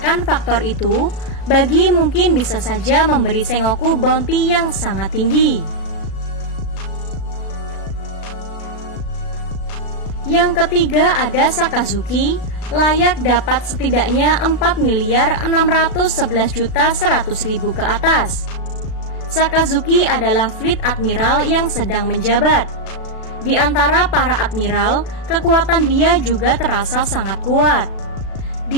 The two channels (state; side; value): late; right; 36 ms